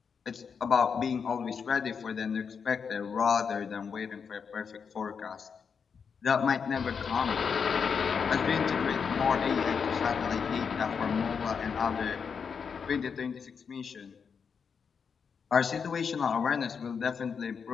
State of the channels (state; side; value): quieter; right; 6.2 dB